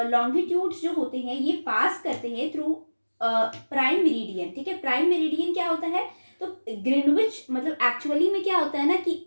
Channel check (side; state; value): both; inverted; correlation -1.00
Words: लॉन्गिट्यूड्स जो होते हैं ये पास करते हैं थ्रू प्राइम मेरिडियन. ठीक है, प्राइम मेरिडियन क्या होता है, तो ग्रीनविच मतलब एक्चुअली में क्या होता है ना कि